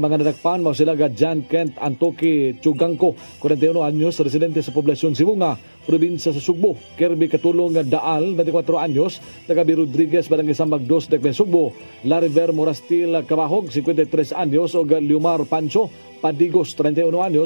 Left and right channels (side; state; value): both; inverted; correlation -1.00